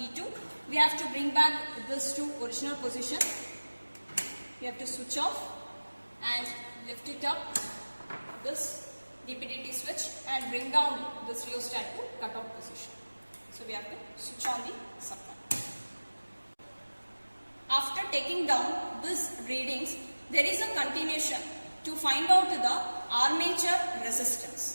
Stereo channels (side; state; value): both; inverted; correlation -1.00